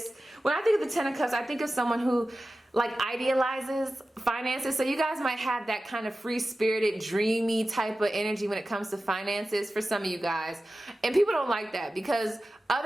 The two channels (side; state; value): both; normal; correlation 0.94